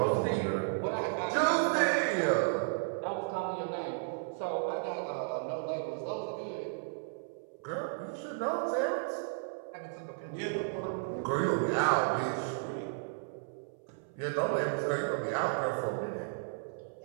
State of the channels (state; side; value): silent; left; 55 dB below the other